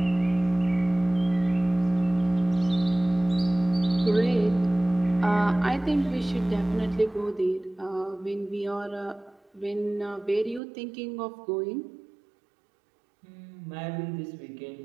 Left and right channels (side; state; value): left; drops out; at 10.6 s